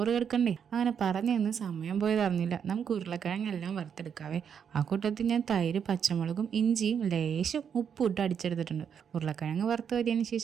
കിടക്കണ്ടേ. അങ്ങനെ പറഞ്ഞു നിന്ന് സമയം പോയത് അറിഞ്ഞില്ല. നമുക്ക് ഉരുളക്കിഴങ്ങെല്ലാം വറുത്തെടുക്കാവേ. ആ കൂട്ടത്തിൽ ഞാൻ തൈര്, പച്ചമുളകും ഇഞ്ചിയും ലേശം ഉപ്പും ഇട്ട് അടിച്ചെടുത്തിട്ടുണ്ട്. ഉരുളക്കിഴങ്ങ് വറുത്ത് വരിയതിന്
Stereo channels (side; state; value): left; quieter; 7.6 dB